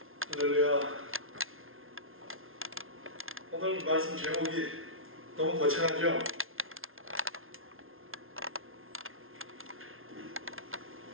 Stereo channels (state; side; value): late; left; 0.61 ms